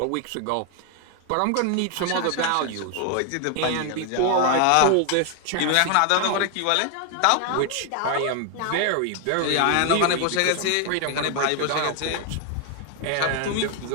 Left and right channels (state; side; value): different; both; correlation 0.00